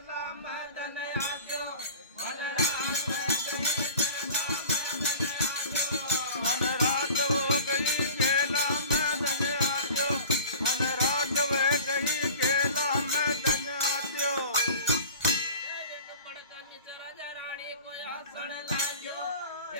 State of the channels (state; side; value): inverted; both; correlation -0.41